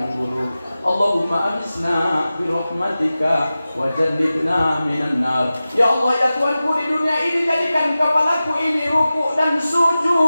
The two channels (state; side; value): inverted; both; correlation -0.95